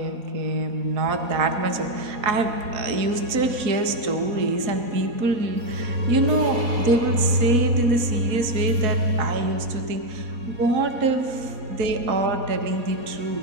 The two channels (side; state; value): left; late; 4.1 ms